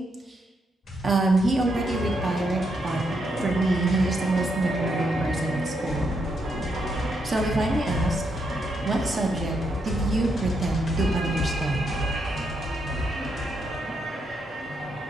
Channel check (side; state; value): both; normal; correlation 0.79